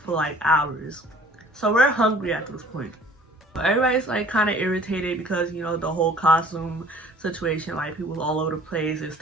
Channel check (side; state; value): both; normal; correlation 0.51